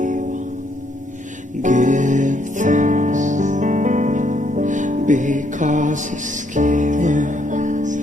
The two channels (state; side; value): normal; both; correlation 0.71